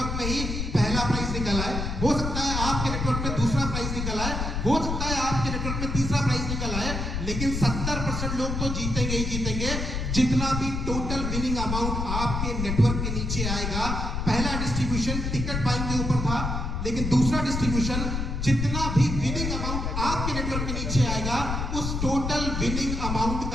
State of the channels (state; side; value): noise; left; rumble, 2 dB below the sound